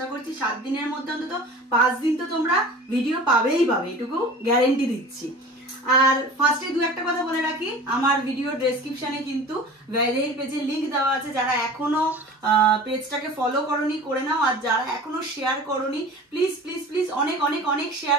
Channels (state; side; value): normal; both; correlation 0.39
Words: করছি 7 দিনের মধ্যে অন্তত 5 দিন তো তোমরা ভিডিও পাবেই পাবে, এটুকু গ্যারেন্টি দিচ্ছি। আর ফার্স্টে দু একটা কথা বলে রাখি, আমার ভিডিও ডেসক্রিপশনে কিন্তু ভ্যালের পেজের লিংক দেওয়া আছে। যারা এখনো পেজটাকে ফলো করোনি করে নাও, আর যারা এখনো শেয়ার করোনি প্লিজ প্লিজ প্লিজ অনেক অনেক অনেক